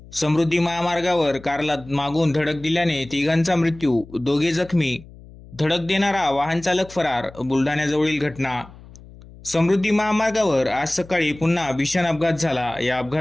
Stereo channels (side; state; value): left; noise; hum, 20 dB below the sound